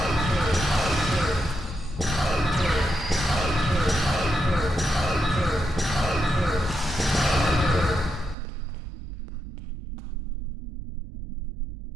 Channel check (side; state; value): left; drops out; at 8.3 s